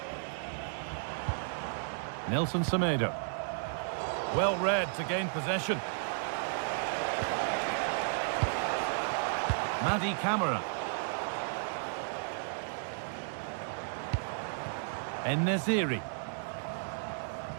Nelson Semedo. Well read to gain possession. Madi Camara. En-Nesyri.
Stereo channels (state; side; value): silent; left; digital silence